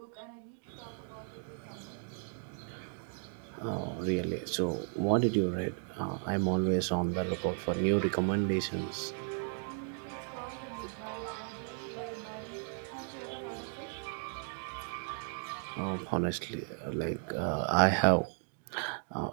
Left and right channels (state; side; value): silent; left; 54 dB below the other